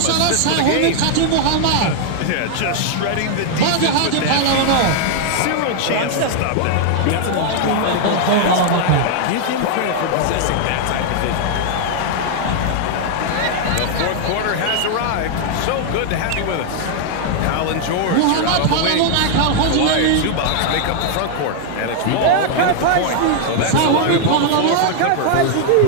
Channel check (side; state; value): both; different; correlation 0.00